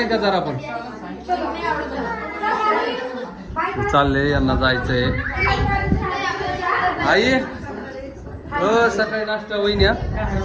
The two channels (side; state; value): both; identical; correlation 1.00